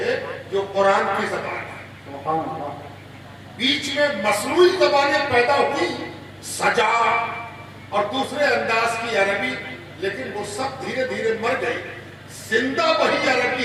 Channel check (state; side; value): identical; both; correlation 1.00